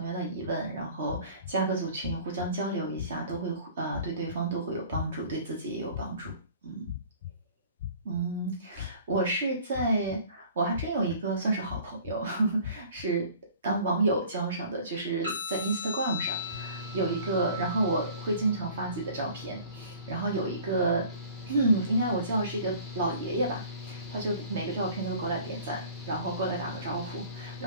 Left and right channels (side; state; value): both; inverted; correlation -0.46